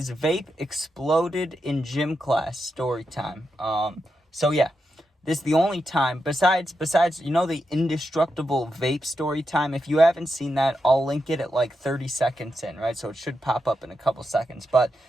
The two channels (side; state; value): both; normal; correlation 0.86